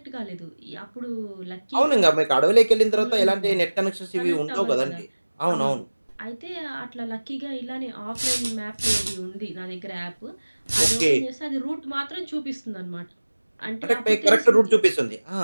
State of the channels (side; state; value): both; inverted; correlation -1.00